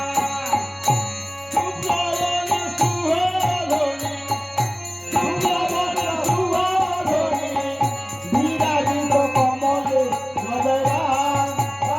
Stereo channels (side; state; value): both; identical; correlation 1.00